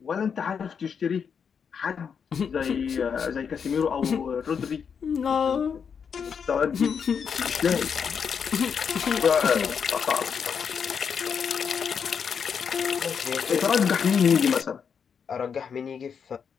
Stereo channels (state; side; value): quieter; right; 6.8 dB